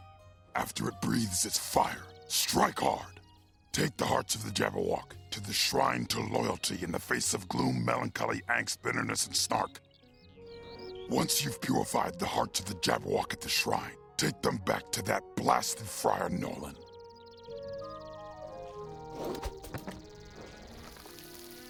After it breathes its fire, strike hard. Take the hearts of the Jabberwock to the Shrine to Loyalty in the face of gloom, melancholy, angst, bitterness, and snark. Once you've purified the hearts of the Jabberwock at the shrine, take them back to that blasted Friar Nolan.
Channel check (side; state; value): both; identical; correlation 1.00